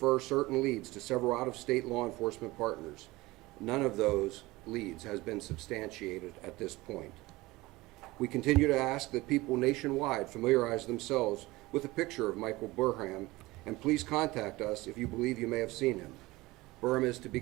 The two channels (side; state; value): left; quieter; 20.4 dB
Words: certain leads to several out-of-state law enforcement partners. None of those leads has been substantiated at this point. We continue to ask that people nationwide familiarize themselves with a picture of Michael Burham, and please contact us if you believe you may have seen him. Burham is to be